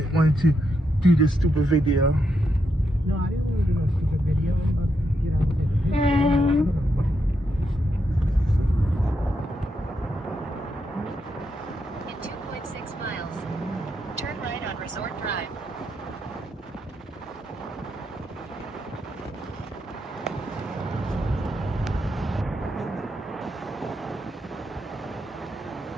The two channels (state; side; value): normal; both; correlation 0.81